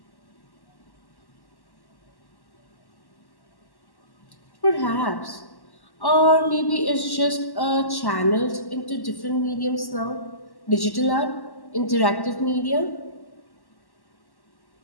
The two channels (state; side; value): late; right; 1.1 ms